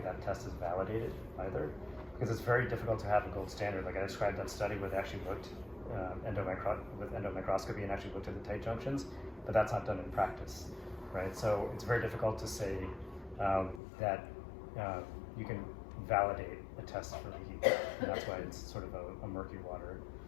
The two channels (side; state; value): right; drops out; at 13.8 s